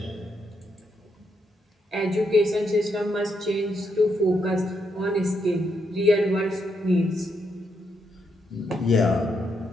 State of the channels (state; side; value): normal; both; correlation 0.79